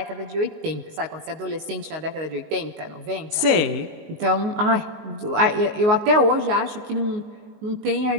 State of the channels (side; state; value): left; late; 19 ms